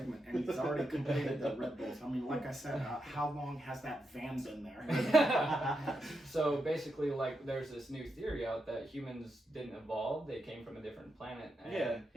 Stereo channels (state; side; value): normal; both; correlation 0.85